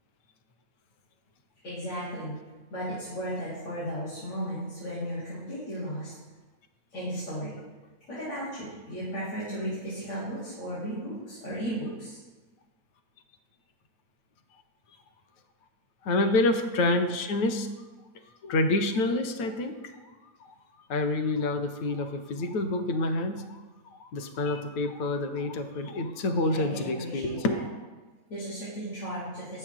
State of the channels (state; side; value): late; right; 9.1 ms